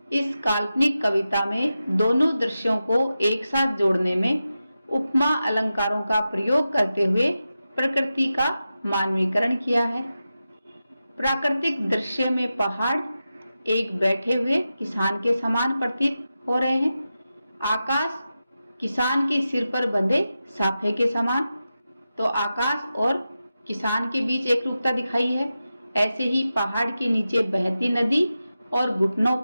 इस काल्पनिक कविता में दोनों दृश्यों को एक साथ जोड़ने में उपमा अलंकारों का प्रयोग करते हुए प्रकृति का मानवीकरण किया है। प्राकृतिक दृश्य में पहाड़ एक बैठे हुए किसान के समान प्रतीत हो रहे हैं। आकाश किसान के सिर पर बंधे साफे के समान, तो आकाश और किसान के बीच एक रूपता दिखाई है। ऐसे ही पहाड़ के नीचे बहती नदी और घुटनों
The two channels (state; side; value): inverted; both; correlation -0.92